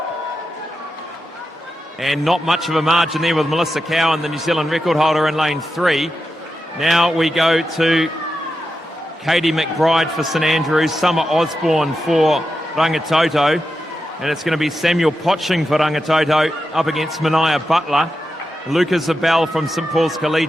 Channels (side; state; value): both; normal; correlation 0.89